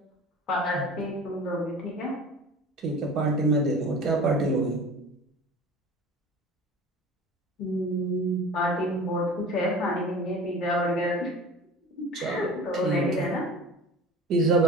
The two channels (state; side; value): normal; both; correlation 0.39